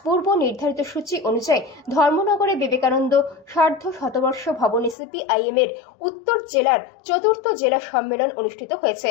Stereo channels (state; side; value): drops out; right; at 5.0 s